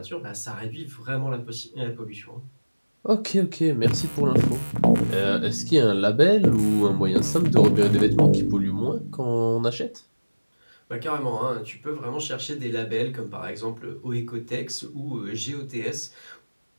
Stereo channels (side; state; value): both; inverted; correlation -1.00